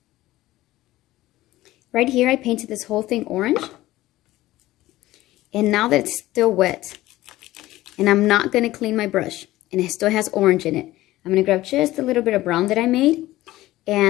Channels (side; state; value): right; quieter; 16.5 dB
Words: Right here, I painted this whole thing orange. And now that it's still wet, and I'm not going to clean my brush, and it still has orange in it, I'm going to grab just a little bit of brown that I made,